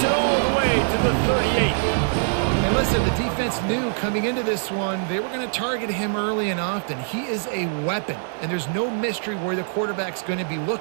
it all the way to the 38. And listen, the defense knew coming into this one, they were going to target him early and often. He is a weapon, and there's no mystery where the quarterback's going to be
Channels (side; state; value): left; silent; digital silence